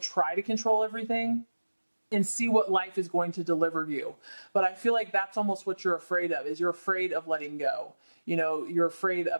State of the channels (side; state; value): both; inverted; correlation -1.00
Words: try to control everything, and see what life is going to deliver you. But I feel like that's almost what you're afraid of, is you're afraid of letting go. You're afraid